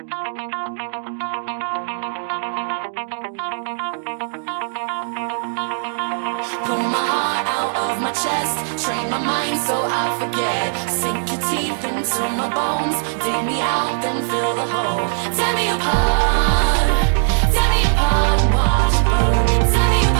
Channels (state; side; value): silent; left; digital silence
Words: Pull my heart out of my chest, train my mind so I forget. Sink your teeth into my bones, dig me out, then fill the hole. Tear me apart, and watch it burn. Tear me